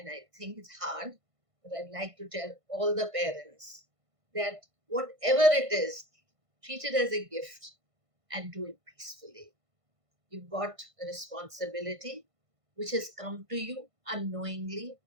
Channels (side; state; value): left; late; 1.5 ms